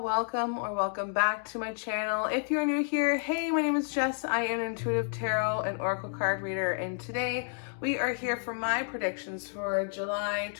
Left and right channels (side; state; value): right; silent; 58 dB below the other